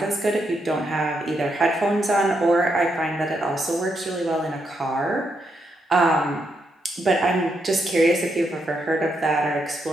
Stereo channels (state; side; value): normal; both; correlation 0.80